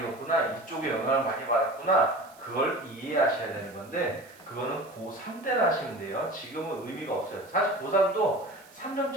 읽었구나. 이쪽에 영향을 많이 받았구나. 그걸 이해하셔야 되는 건데 그거는 고3 때나 하시면 돼요. 지금은 의미가 없어요. 사실 고3도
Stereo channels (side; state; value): right; noise; hiss, 25 dB below the sound